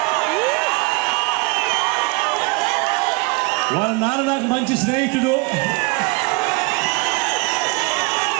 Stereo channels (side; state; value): left; quieter; 27.4 dB